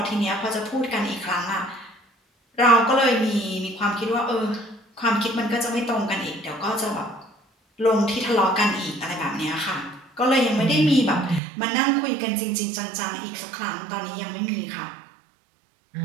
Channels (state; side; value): drops out; left; at 11.4 s